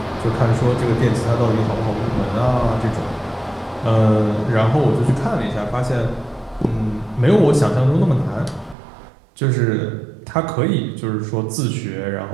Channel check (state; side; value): drops out; left; at 8.8 s